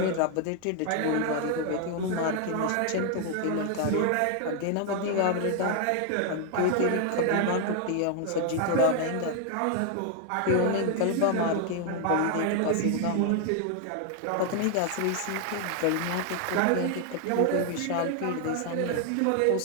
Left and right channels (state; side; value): different; both; correlation 0.00